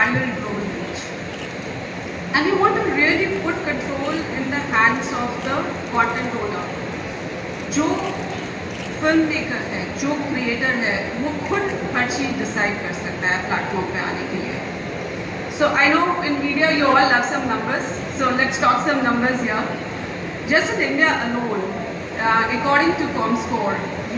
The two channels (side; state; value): both; identical; correlation 1.00